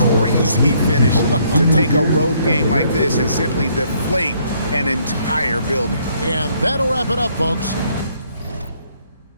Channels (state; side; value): inverted; both; correlation -0.67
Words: crazy finish to take a road game like this and simply deflate an entire building. And that'll wrap it up, folks.